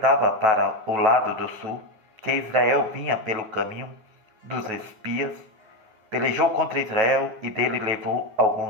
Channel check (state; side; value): late; left; 9.2 ms